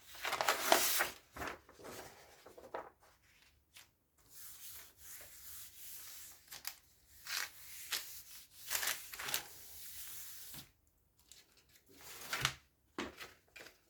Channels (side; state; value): both; identical; correlation 1.00